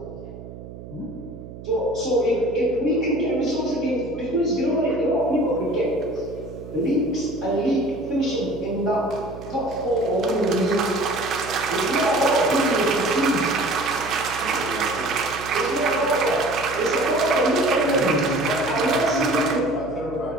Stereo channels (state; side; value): noise; right; hum, 14 dB below the sound